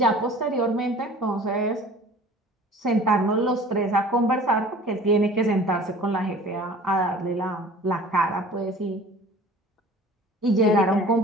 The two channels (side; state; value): both; normal; correlation 0.45